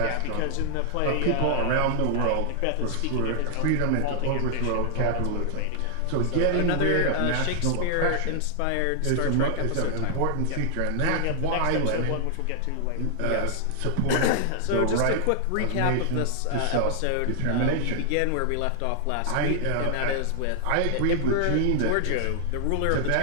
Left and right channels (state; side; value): different; both; correlation 0.00